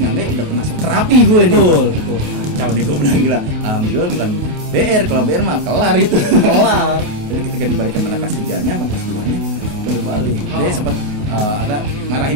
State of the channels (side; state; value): left; late; 28 ms